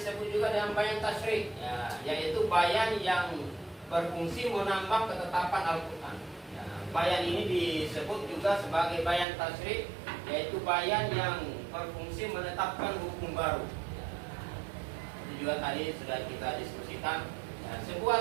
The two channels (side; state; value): left; drops out; at 9.2 s